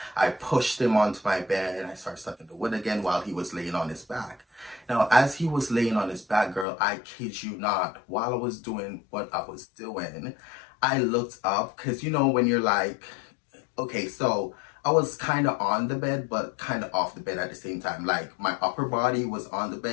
I pushed him onto my bed and I started sucking the wood again while he was laying on his back. Now, as he was laying on his back, girl, I kid you not, while I was doing what I was doing, I looked up, because you know when you're like, okay, so I was kind of on the bed, but kind of off the bed at the same time. Like my upper body was on the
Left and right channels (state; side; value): drops out; right; at 6.7 s